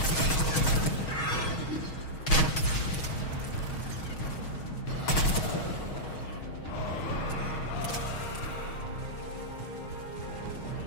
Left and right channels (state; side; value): late; right; 6.3 ms